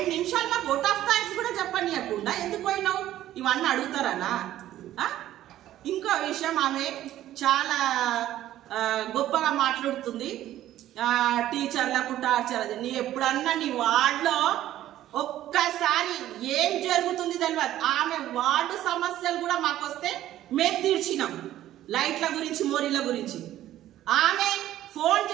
నిమిషాలు మాకు ఓట్ ఆఫ్ థ్యాంక్స్ కూడా చెప్పనీయకుండా ఎందుకు పోయినావు? ఇవన్నీ అడుగుతారనా? ఇంకో విషయం, ఆమె చాలా గొప్పగా మాట్లాడుతుంది, టీచర్లకు టార్చర్. అది నీ ఎప్పుడన్నా నీ వార్డులో ఒక్కసారి ఏం జరుగుతుంది తెలియదు. ఆమె వార్డు సమస్యలు కూడా మాకు వస్తే మేము తీర్చినాం, లైట్ల గురించి మోరీల గురించి. ఆమె ఫోన్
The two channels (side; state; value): left; quieter; 13.2 dB